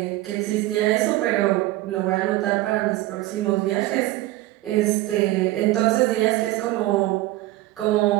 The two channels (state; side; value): quieter; left; 17.3 dB